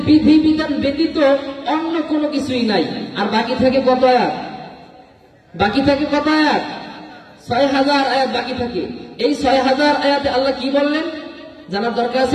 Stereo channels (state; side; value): identical; both; correlation 1.00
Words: বিধিবিধান ব্যতীত অন্য কোনো কিছুই নাই। আর বাকি থাকে কত আয়াত? বাকি থাকে কত আয়াত? 6000 আয়াত বাকি থাকে। এই 6000 আয়াতে আল্লাহ কি বললেন জানার দরকার আছে